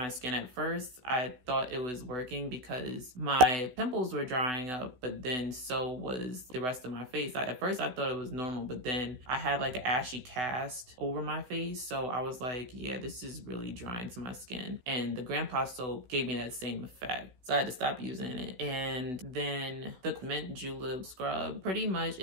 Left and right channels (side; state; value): left; late; 16 ms